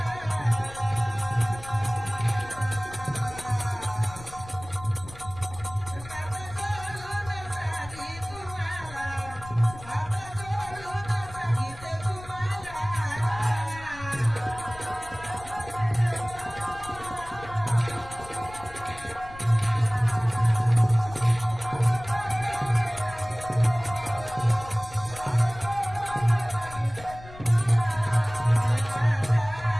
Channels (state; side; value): noise; left; rumble, 17 dB below the sound